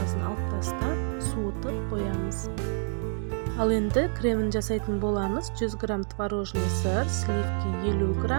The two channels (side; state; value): left; silent; 59 dB below the other